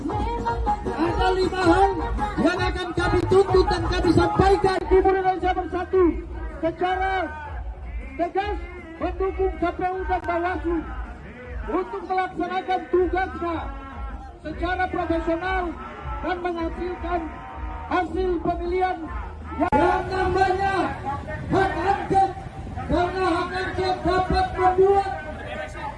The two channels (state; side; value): identical; both; correlation 1.00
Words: Ada 5 hal yang akan kami tuntut dan kami sampaikan. Timur Indonesia Bersatu secara tegas mendukung KPU dan Bawaslu untuk melaksanakan tugasnya secara profesional dan menghasilkan hasil pemilihan yang namanya hak angket, karena hak angket dapat membuat